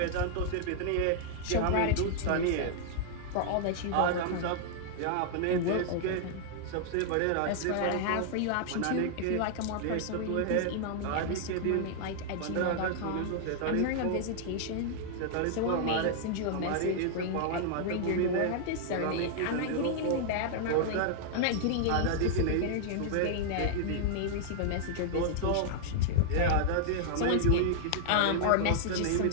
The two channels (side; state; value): both; different; correlation -0.01